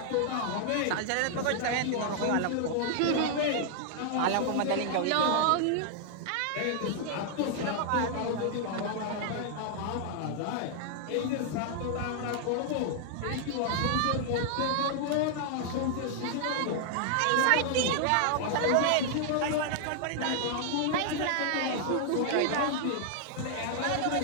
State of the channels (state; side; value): different; both; correlation -0.01